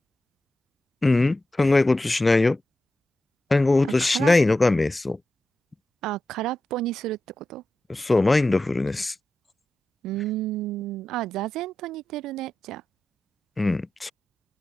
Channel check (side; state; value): both; normal; correlation 0.92